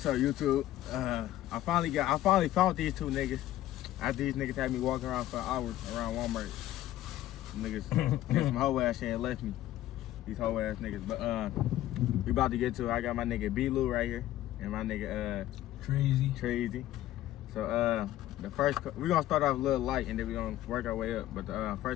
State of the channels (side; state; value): right; quieter; 14.1 dB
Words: up, YouTube? I finally found these two niggas. After these niggas had me walking around for hours around Walmart. Niggas did some hoe ass shit and left me. These hoe ass niggas. But we about to get to it. I got my nigga B-Lou right here and my nigga Trazy. So the first we gonna start off a little light and then we gonna work our way up. But the